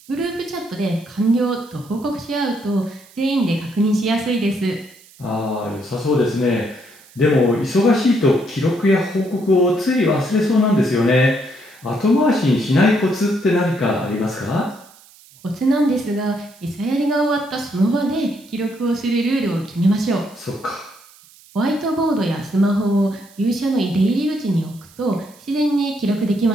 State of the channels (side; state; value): right; noise; hiss, 25 dB below the sound